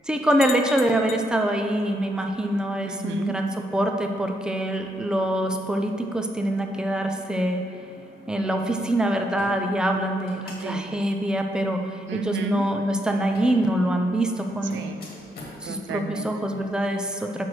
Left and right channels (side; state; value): both; normal; correlation 0.78